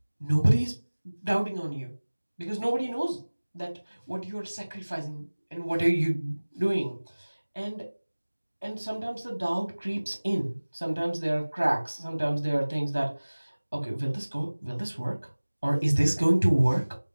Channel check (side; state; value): both; inverted; correlation -1.00